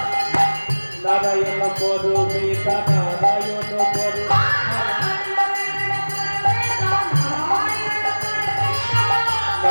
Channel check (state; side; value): inverted; both; correlation -1.00